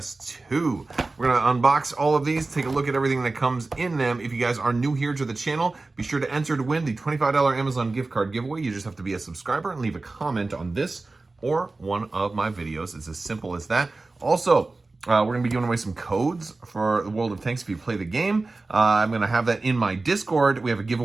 We're gonna unbox all of these, take a look at everything that comes in them. If you guys are new here to the channel, be sure to enter to win the $25 Amazon gift card giveaway. You just have to be a subscriber and leave a comment on this or one of my videos. It's as simple as that. Also, we're gonna be giving away some codes for the World of Tanks if you play the game. I'm gonna have that in my Discord. We have a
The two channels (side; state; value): left; quieter; 3.4 dB